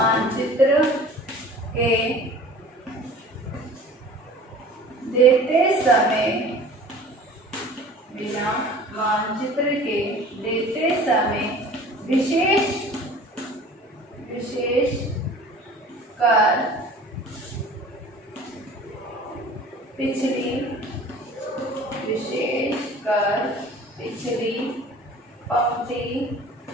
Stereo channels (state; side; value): normal; both; correlation 0.44